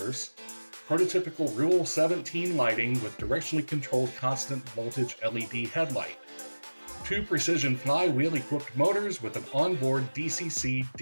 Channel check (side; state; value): both; inverted; correlation -1.00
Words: prototypical Rule 17 lighting with directionally controlled constant voltage LED headlight, 2 precision flywheel-equipped motors with an onboard